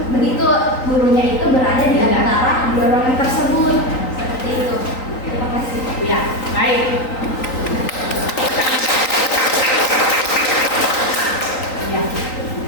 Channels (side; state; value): right; late; 3.9 ms